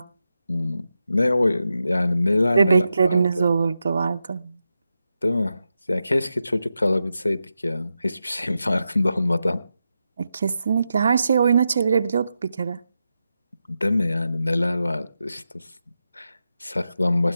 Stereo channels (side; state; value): both; inverted; correlation -0.89